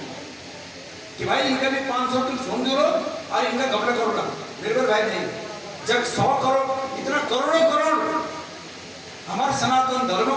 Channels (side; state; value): both; identical; correlation 1.00